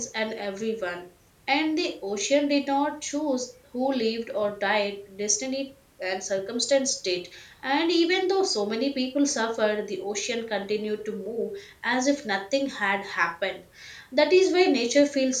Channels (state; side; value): identical; both; correlation 1.00